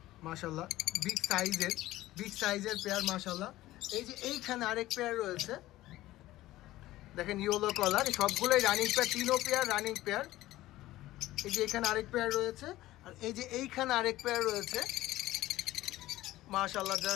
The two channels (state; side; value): quieter; right; 16.2 dB